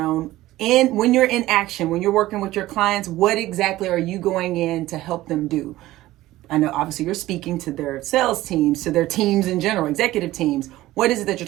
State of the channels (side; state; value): left; quieter; 16.4 dB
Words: when you're in action, when you're working with your clients, what exactly are you going in to help them do? I know obviously you're speaking to their sales teams, to their teams in general, executive teams. What is it that you're